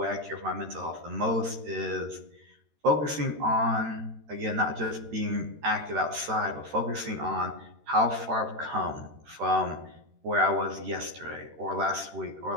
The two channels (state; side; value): late; left; 13 ms